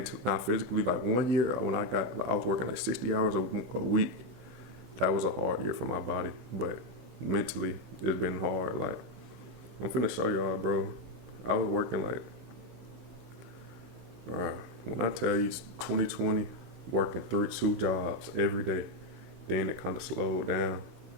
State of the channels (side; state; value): left; late; 16 ms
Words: not physically. Like 1 year when I was working like 60 hours a week. That was a hard year for my body, but mentally it's been hard. Like I'm finna show y'all, bro. I was working like, when I tell you 2020, working 2 jobs every day, then it kind of slowed down,